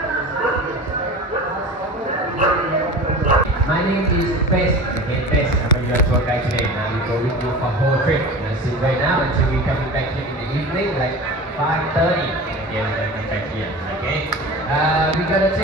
My name is Bess. Okay, Bess. I'm your tour guide today. Now we go with you for whole trip. So right now until we coming back here in the evening, like 5:30. Okay, we're gonna come back here. Okay. We gotta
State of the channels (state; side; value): normal; both; correlation 0.34